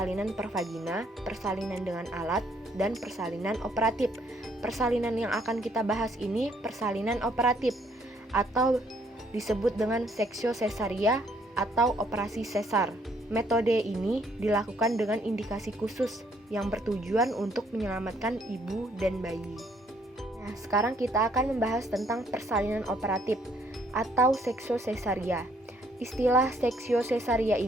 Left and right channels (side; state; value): both; normal; correlation 0.67